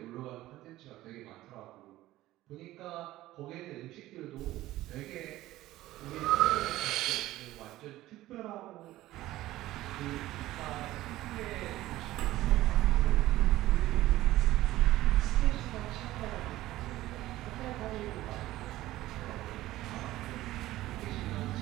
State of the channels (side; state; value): left; quieter; 16.0 dB